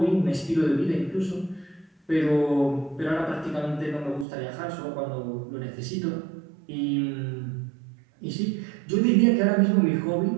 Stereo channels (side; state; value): left; drops out; at 4.2 s